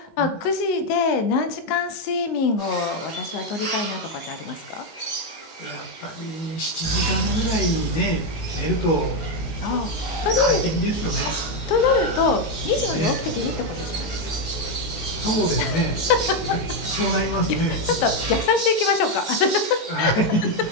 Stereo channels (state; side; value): late; right; 19 ms